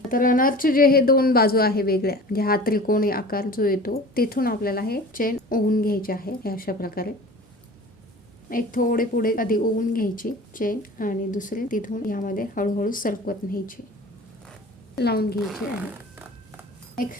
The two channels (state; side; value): normal; both; correlation 0.40